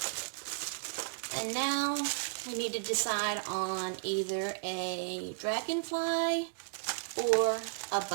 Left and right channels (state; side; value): silent; left; digital silence